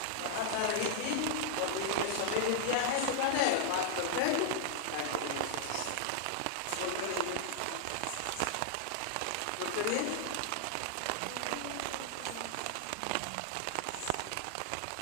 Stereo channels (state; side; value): different; both; correlation -0.01